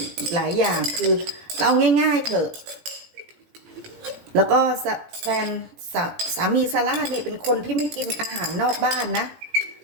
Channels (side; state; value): left; late; 17 ms